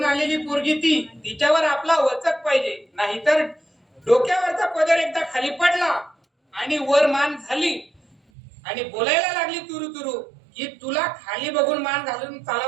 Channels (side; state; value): left; drops out; at 8.2 s